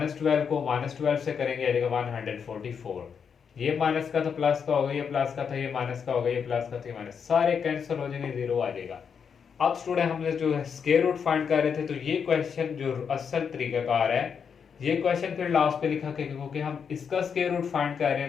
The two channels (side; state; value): right; quieter; 6.7 dB